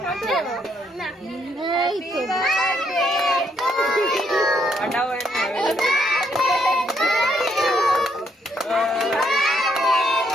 কাটা এই তো কাটাও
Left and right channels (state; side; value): normal; both; correlation 0.73